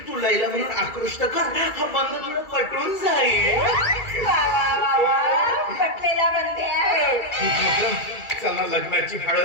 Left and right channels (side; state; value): right; late; 2.3 ms